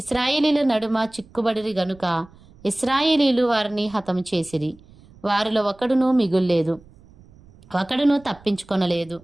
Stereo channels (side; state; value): right; noise; rumble, 25 dB below the sound